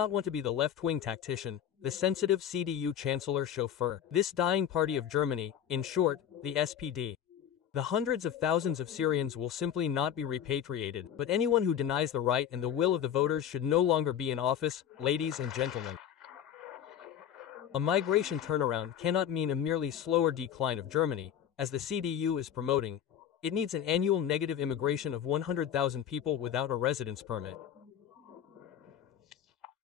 want to be the left-wing tactician, the sensitive CDU chancellor chauffeur. This dying party of Germany, in short, the SPD. The hundreds of thousands of Syrians will simply not be repatriated, but anyone who denies the right and the will of the voters should no longer be in office, ladies and gentlemen. A migration turnaround cannot mean a merely slower decline of Germany, as the CDU is promoting. It needs an annual negative immigration of 100,000 people without a residence permit.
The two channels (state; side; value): quieter; right; 9.5 dB